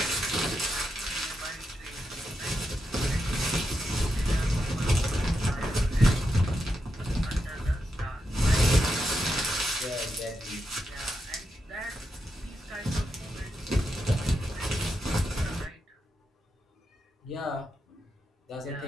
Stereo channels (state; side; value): normal; both; correlation 0.86